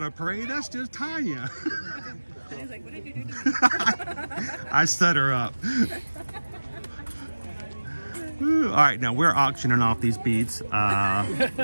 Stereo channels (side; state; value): both; inverted; correlation -1.00